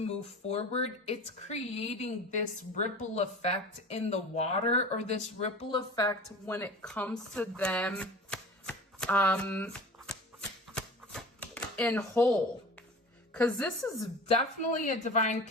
forward, it's creating this ripple effect in the water, or this ripple effect when it comes to them in whole. Because this is definitely a divine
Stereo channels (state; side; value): normal; both; correlation 0.37